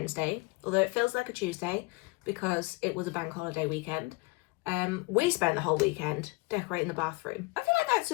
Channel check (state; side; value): quieter; right; 25.6 dB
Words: although it feels like a Tuesday because it was a bank holiday weekend. We spent the whole weekend decorating the bathroom. I feel like that's